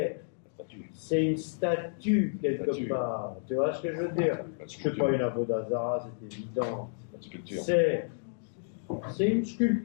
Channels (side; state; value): right; silent; digital silence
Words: C'est une statue quelque part. Tu vois ce que je veux dire? C'est pas une Avodazara, c'est évident. C'est une